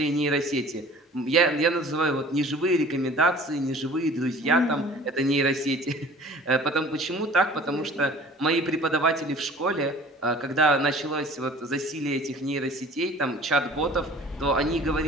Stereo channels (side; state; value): both; normal; correlation 0.46